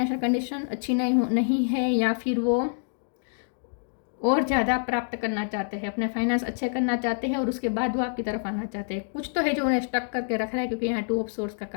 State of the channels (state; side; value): silent; right; digital silence